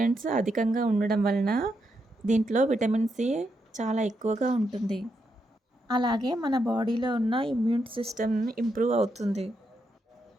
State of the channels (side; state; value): both; normal; correlation 0.82